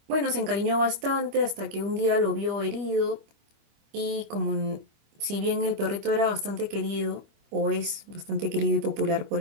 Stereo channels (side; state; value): left; late; 25 ms